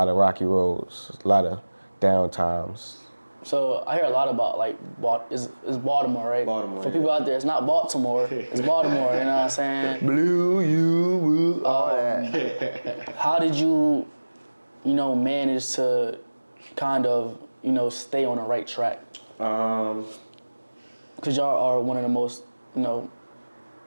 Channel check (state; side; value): inverted; both; correlation -1.00